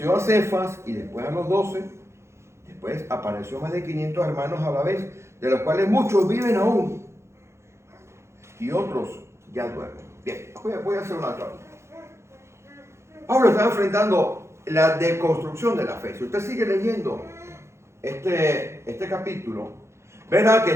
a Cefas y después a los 12, después apareció a más de 500 hermanos a la vez, de los cuales muchos viven aún y otros ya duermen. Bien, voy a hacer una aclaración. Pablo está enfrentando la deconstrucción de la fe. Si usted sigue leyendo este capítulo, verá que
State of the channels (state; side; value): late; left; 0.13 ms